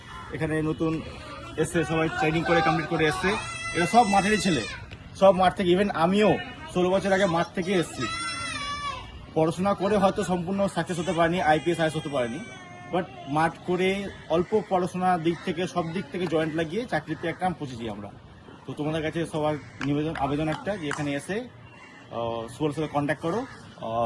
এখানে নতুন এসছে, সবাই ট্রেনিং করে কমপ্লিট করে এসছে। এরা সব মাঠেরই ছেলে, সব মাঠ থেকে। ইভেন আমিও 16 বছর আগে মাঠ থেকে এসেছি। পড়াশোনা করে হয়তো সম্পূর্ণ সাকসেস হতে পারেনি, আইপিএস আইএস হতে পারেনি, বাট মাঠ করে অল্প পড়াশোনার দিক থেকে সব দিক থেকে জয়েন্ট লাগিয়ে চাকরিতে একটা পৌঁছেছি আমরা। তো তোমাদের কাছে সবার আবেদন একটা যে এখানে এসে সুপার সাথে কন্ট্যাক্ট করো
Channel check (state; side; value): identical; both; correlation 1.00